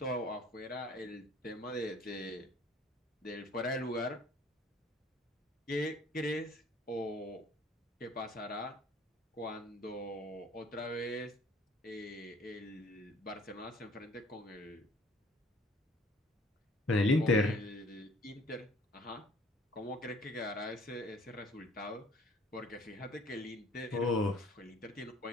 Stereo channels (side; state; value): both; normal; correlation 0.55